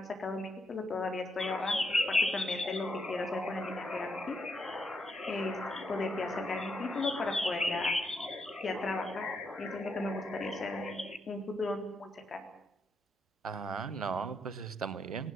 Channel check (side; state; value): both; normal; correlation 0.79